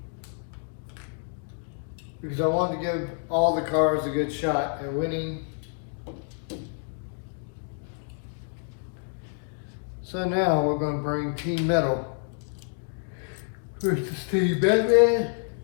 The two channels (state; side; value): silent; right; 59 dB below the other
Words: Because I wanted to give all the cars a good shot at winning. So now we're going to bring Team Metal versus Team Batman.